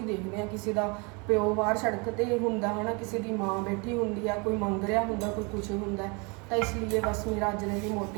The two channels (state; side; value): quieter; left; 30.4 dB